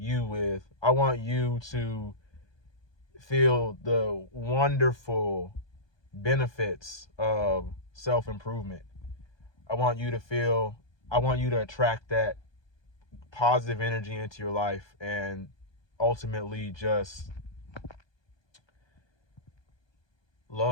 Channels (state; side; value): late; right; 1.2 ms